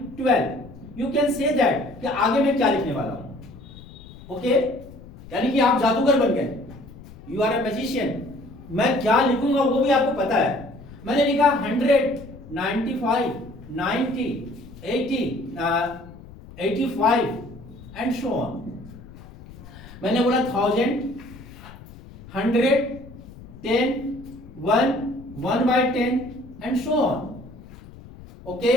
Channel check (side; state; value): left; noise; rumble, 18 dB below the sound